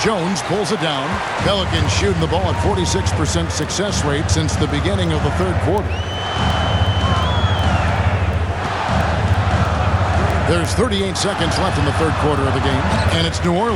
pulls it down. Pelicans shooting the ball at 46% success rate since the beginning of the third quarter. There's 38 seconds left in the third quarter of the game. And it's New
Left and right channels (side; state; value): both; identical; correlation 1.00